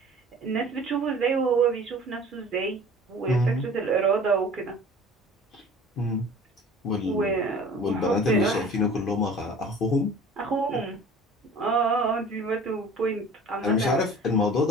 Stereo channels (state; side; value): normal; both; correlation 0.45